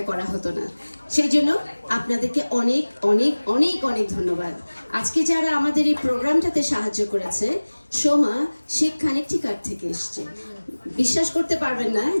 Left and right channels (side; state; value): both; inverted; correlation -1.00